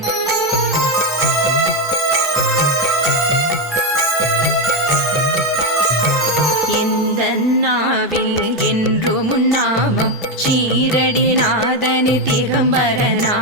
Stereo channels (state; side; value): normal; both; correlation 0.09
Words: இந்த நாவில் என்றும் நாமம் ஷீரடி நாதனி திகம்பர